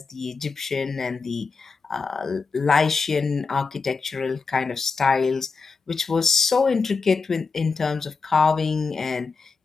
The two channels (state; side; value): quieter; right; 4.6 dB